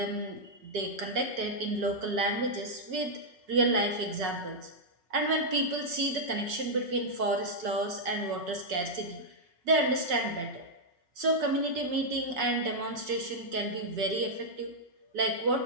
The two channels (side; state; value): left; late; 5.8 ms